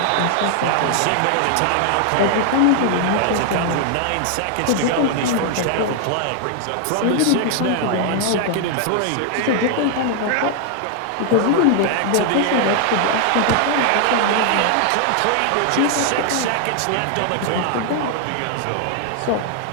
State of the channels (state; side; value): different; both; correlation 0.00